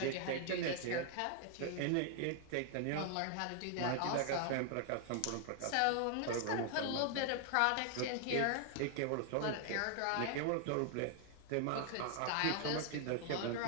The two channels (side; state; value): both; different; correlation 0.00